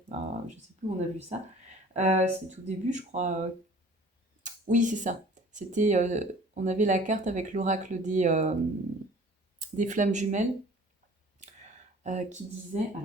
Je sais plus où on a vu ça. C'est tout début, je crois. Oui, c'est ça. C'était, on avait la carte avec l'oracle des flammes jumelles qui disait,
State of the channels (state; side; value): normal; both; correlation 0.48